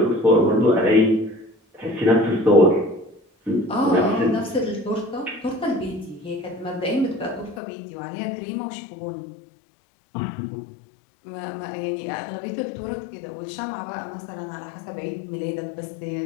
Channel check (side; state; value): right; drops out; at 7.6 s